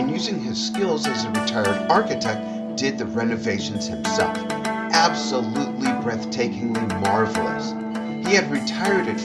using his skills as a retired architect, did the renovations himself. Absolutely breathtakingly marvelous. He had retired at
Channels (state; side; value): identical; both; correlation 1.00